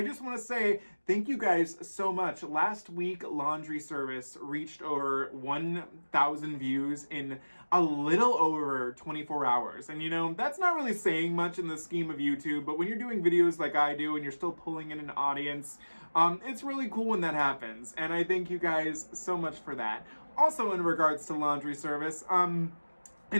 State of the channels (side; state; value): both; inverted; correlation -1.00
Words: just want to say thank you guys so much. Last week, Laundry Service reached over 1,000 views in a little over 24 hours. And you know, that's not really saying much in the scheme of YouTube, but when you're doing videos like I do and you're still pulling in an audience, it's really cool when that happens. And I thank you guys so much for that. Also in regards to Laundry Service, in